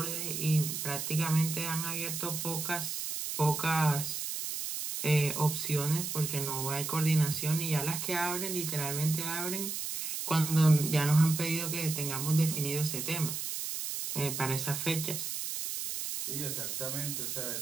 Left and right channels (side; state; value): right; noise; hiss, 4 dB below the sound